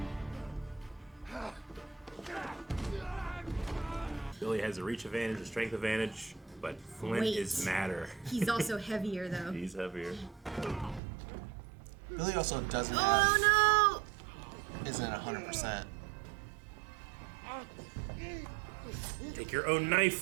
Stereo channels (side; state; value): left; drops out; at 11.0 s